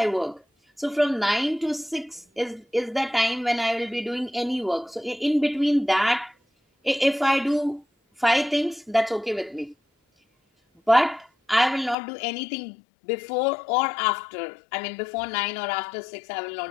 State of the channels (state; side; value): drops out; right; at 12.0 s